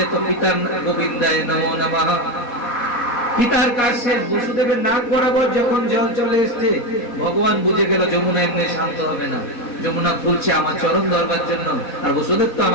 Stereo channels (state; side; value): late; right; 4.2 ms